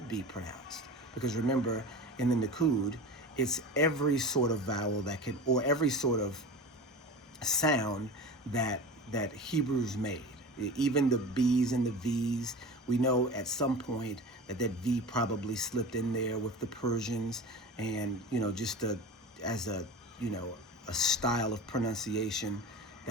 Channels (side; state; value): both; normal; correlation 0.33